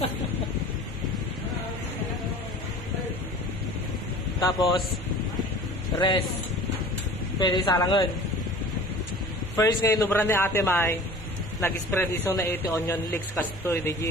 Tapos, rest. Pwede salangan. First ngayon, nubran ni Ate May, nag-spread iso na ito onion leeks kastoy.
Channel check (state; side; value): noise; right; hum, 18 dB below the sound